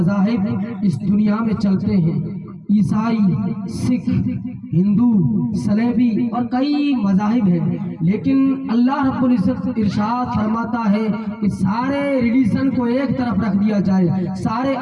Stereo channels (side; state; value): both; identical; correlation 1.00